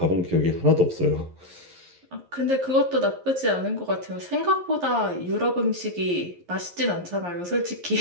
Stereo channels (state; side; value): late; left; 11 ms